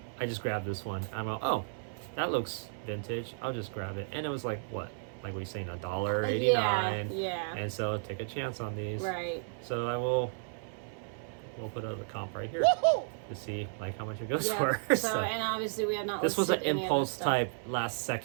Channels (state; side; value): silent; left; 56 dB below the other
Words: just grabbed this one. I'm like, oh, that looks vintage. I'll just grab it. And it was like, what? Like we saying $1.89. Yeah. And so take a chance on these. Right. So we'll put a comp right here to see like how much it goes for. So and obviously we have not. This was an impulse type last